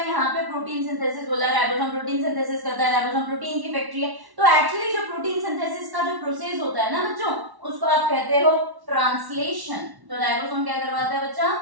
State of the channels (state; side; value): late; left; 1.1 ms